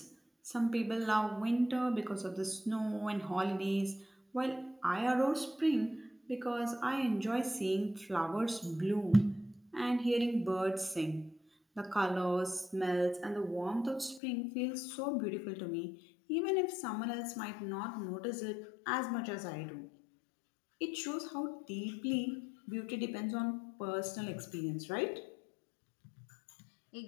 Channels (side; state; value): right; drops out; at 14.2 s